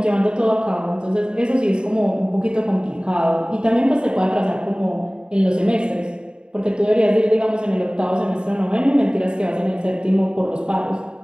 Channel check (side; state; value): left; late; 0.050 ms